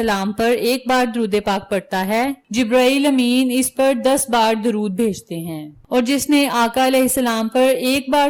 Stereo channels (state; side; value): identical; both; correlation 1.00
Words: پر ایک بار درود پاک پڑھتا ہے، جبرائیل امین اس پر 10 بار درود بھیجتے ہیں، اور جس نے آقا علیہ السلام پر ایک بار